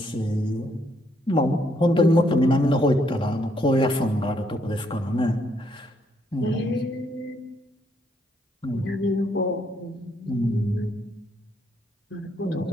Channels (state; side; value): normal; both; correlation 0.72